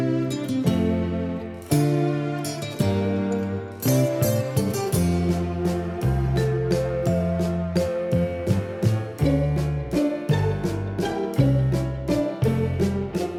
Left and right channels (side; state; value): both; identical; correlation 1.00